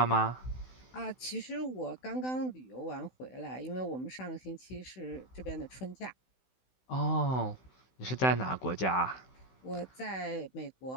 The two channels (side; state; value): right; late; 16 ms